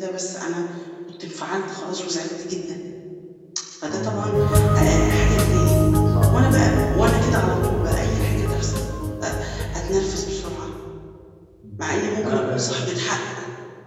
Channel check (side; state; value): both; identical; correlation 1.00